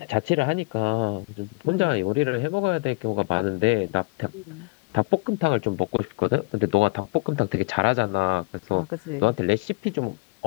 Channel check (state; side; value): quieter; right; 27.6 dB